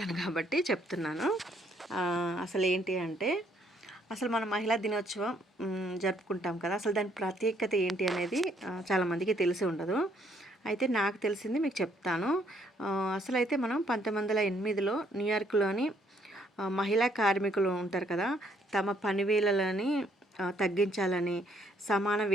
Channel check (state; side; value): normal; both; correlation 0.68